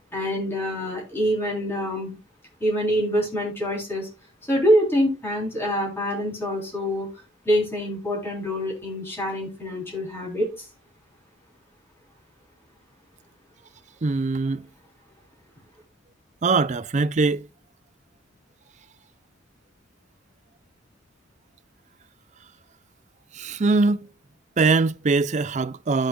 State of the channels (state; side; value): normal; both; correlation 0.58